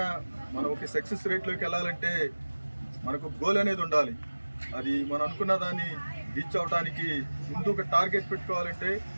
మనం ఒక సక్సెస్ రేట్లోకి వెళ్ళాలంటే మనకు గోల్ అనేది ఉండాలి. అది మనం అనుకున్న దాన్ని రీచ్ అవడానికి ముందు ఒక టార్గెట్ పెట్టుకోవాలంటే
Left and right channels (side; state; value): both; inverted; correlation -1.00